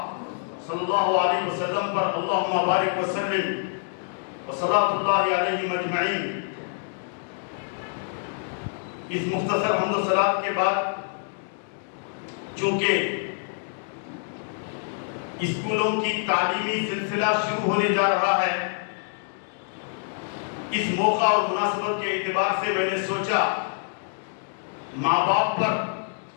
صلی اللہ علیہ وسلم پر اللہم بارک وسلم وصلاۃ اللہ علیہ مجمعین اس مختصر حمد و صلات کے بعد چونکہ اسکولوں کی تعلیمی سلسلہ شروع ہونے جا رہا ہے اس موقع اور مناسبت کے اعتبار سے میں نے سوچا ماں باپ پر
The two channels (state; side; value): silent; right; digital silence